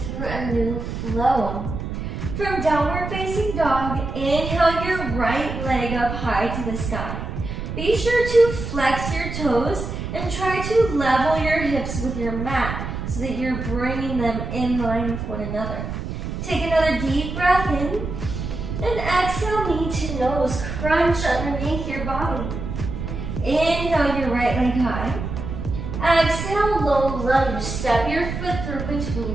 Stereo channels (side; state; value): right; noise; rumble, 6 dB below the sound